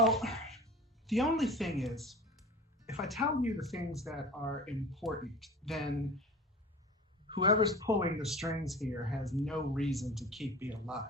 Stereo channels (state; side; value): normal; both; correlation 0.37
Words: the only thing is, if I tell you the things that are important, then whoever's pulling the strings here has no reason to keep me